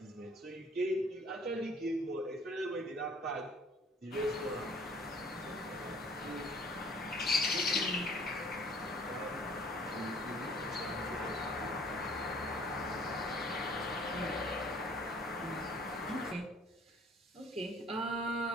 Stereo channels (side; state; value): both; normal; correlation 0.55